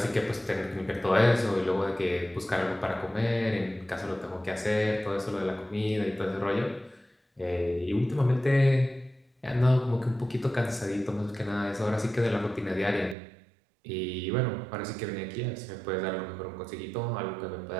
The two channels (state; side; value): drops out; left; at 13.2 s